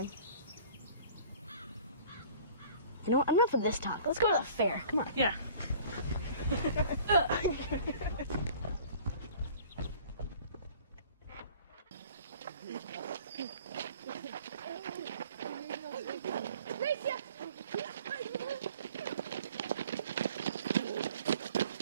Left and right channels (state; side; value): inverted; both; correlation -0.49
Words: You know what? Enough of this talk. Let's go to the fair. Come on. Yeah.